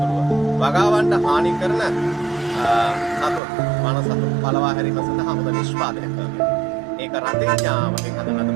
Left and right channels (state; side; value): drops out; left; at 3.4 s